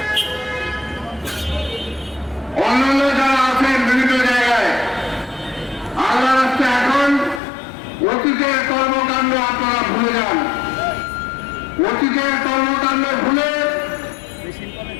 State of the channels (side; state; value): right; drops out; at 7.4 s